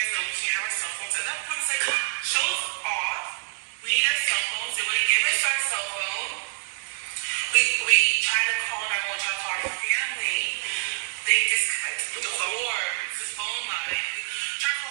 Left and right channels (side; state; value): left; silent; 61 dB below the other